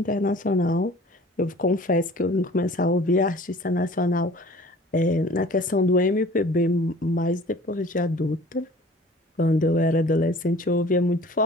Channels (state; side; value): normal; both; correlation 0.47